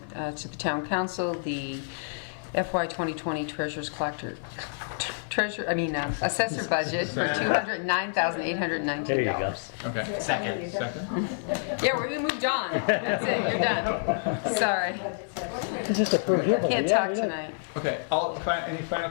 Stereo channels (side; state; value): right; silent; 57 dB below the other